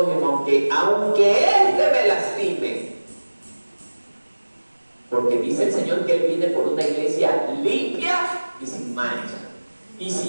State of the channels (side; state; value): both; inverted; correlation -1.00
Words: aunque éste me lastime. Porque dice el Señor que Él viene por una iglesia limpia y sin mancha. Y